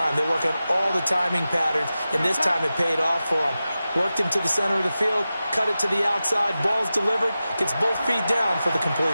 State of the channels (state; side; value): inverted; both; correlation -0.94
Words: They work on all the timing patterns, and this time it paid off for them. Worked him to the center of the field, cut it to the outside, ball's delivered, gets both feet down for the